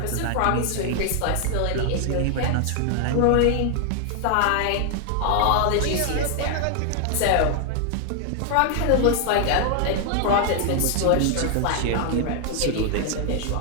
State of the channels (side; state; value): both; different; correlation 0.00